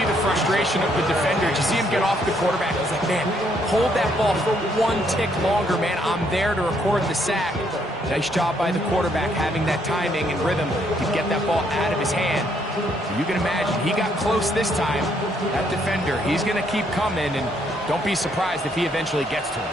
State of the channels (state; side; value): normal; both; correlation 0.71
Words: the frustration of the defender. You see him get off the quarterback. He's like, man, hold that ball for 1 tick longer, man. I'm there to record the sack. Nice job by the quarterback having that timing and rhythm to get that ball out of his hand. You can imagine, he got close this time. That defender, he's going to keep coming, and don't be surprised if he eventually gets to him.